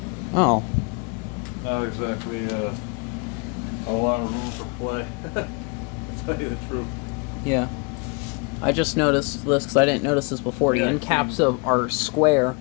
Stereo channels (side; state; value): right; quieter; 33.3 dB